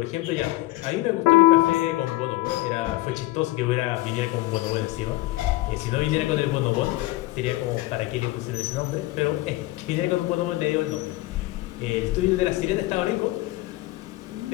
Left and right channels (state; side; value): quieter; right; 18.8 dB